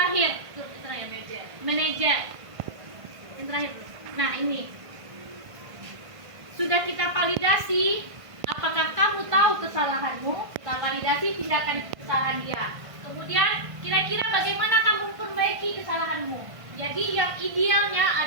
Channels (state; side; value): late; left; 1.5 ms